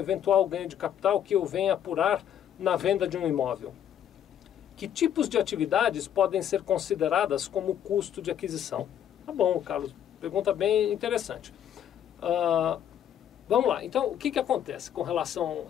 ganho de capital que eu venha apurar na venda de um imóvel? Que tipos de atividades podem ser consideradas como custo de aquisição? Tá bom, Carlos, pergunta bem interessante. Vamos lá, então o que acontece com relação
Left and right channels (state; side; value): quieter; right; 9.9 dB